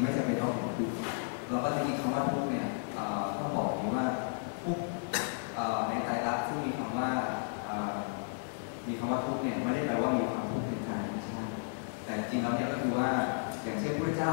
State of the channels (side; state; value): right; silent; digital silence